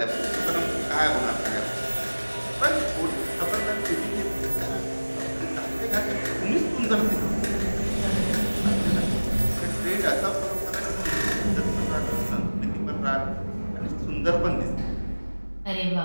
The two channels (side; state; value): both; inverted; correlation -1.00